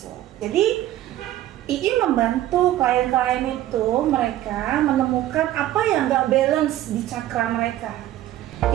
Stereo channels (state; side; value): quieter; left; 13.8 dB